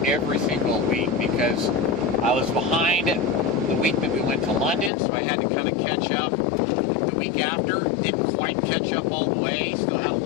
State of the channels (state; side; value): drops out; right; at 4.9 s